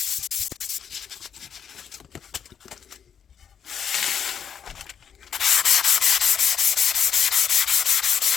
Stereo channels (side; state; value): right; quieter; 7.9 dB